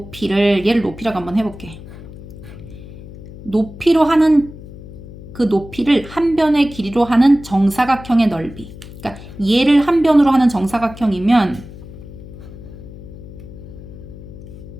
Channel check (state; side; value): noise; left; hum, 15 dB below the sound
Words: 얘를 높이라고 한번 해볼게. 높이로 하는 그 높이를 한 변의 길이로 하는 정사각형의 넓이. 그러니까 얘를 한 변으로 하는 정사각형이면